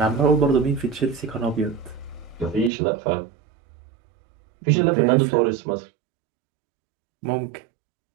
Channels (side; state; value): left; drops out; at 2.7 s